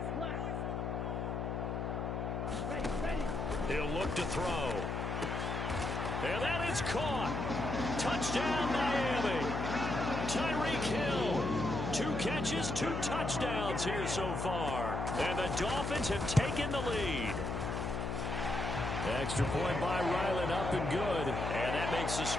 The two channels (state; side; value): noise; left; hum, 2 dB below the sound